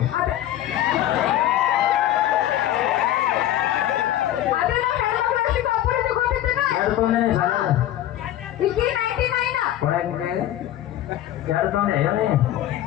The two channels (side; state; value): right; quieter; 12.8 dB